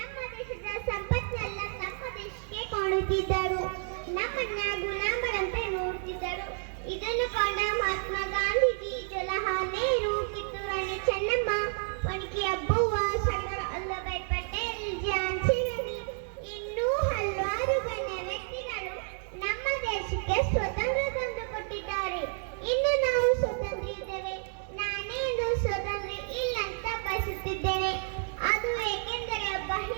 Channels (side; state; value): left; silent; 56 dB below the other